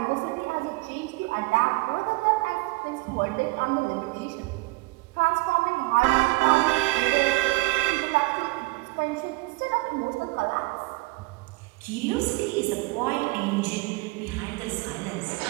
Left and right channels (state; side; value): quieter; left; 23.4 dB